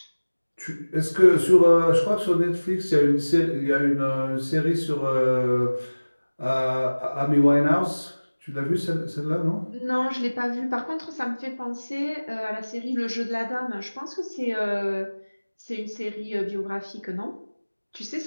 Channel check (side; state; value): both; inverted; correlation -1.00